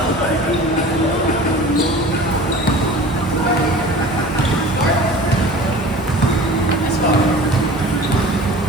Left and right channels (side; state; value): both; normal; correlation 0.40